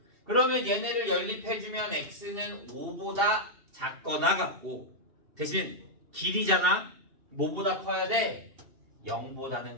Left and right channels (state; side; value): late; left; 2.7 ms